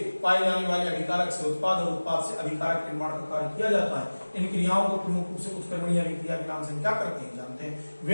पाए जाने वाले अभिकारक से उत्पाद और उत्पाद से अभिकारक निर्माण का कार्य किया जाता है। इन क्रियाओं को प्रमुख रूप से उत्क्रमणीय अभिक्रिया के नाम से क्या करते हैं, जानते हैं।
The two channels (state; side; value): inverted; both; correlation -1.00